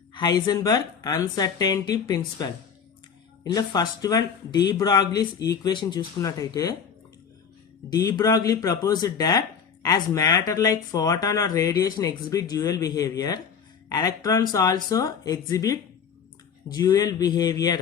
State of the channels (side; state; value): right; quieter; 6.8 dB